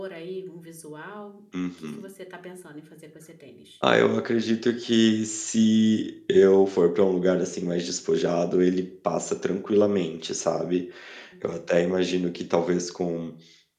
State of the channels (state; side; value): identical; both; correlation 1.00